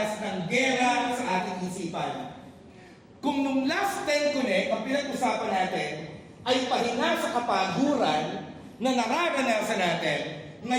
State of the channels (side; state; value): both; identical; correlation 1.00